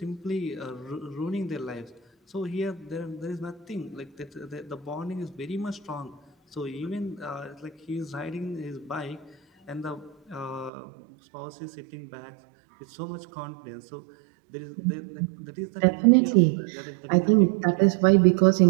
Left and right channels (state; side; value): drops out; left; at 10.7 s